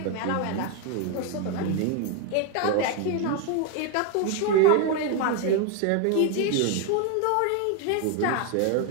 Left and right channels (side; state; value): both; different; correlation 0.01